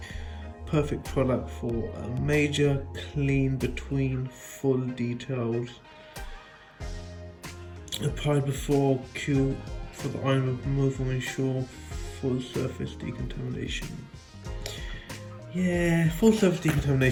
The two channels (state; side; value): identical; both; correlation 1.00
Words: Perfect product for a major clean between full details. Applied before Q for the iron removal, ensure full surface decontamination. Yeah, full surface